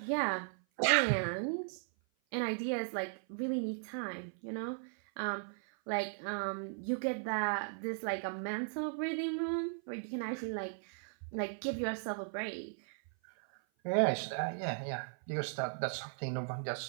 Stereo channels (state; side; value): silent; left; 53 dB below the other